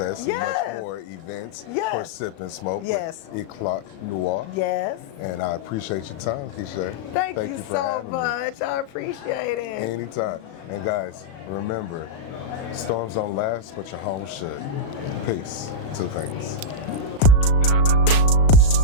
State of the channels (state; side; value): late; right; 37 ms